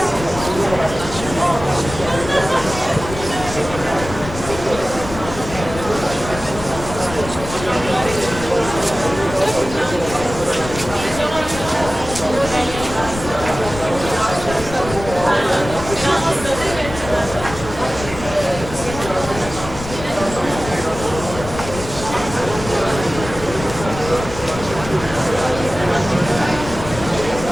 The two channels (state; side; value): noise; left; rumble, 11 dB below the sound